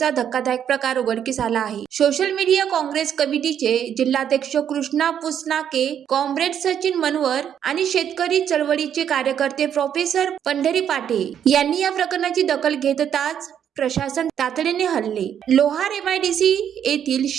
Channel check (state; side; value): quieter; left; 9.1 dB